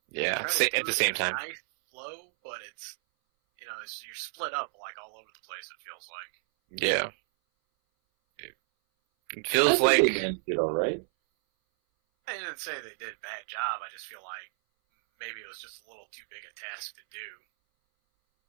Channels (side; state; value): left; silent; 57 dB below the other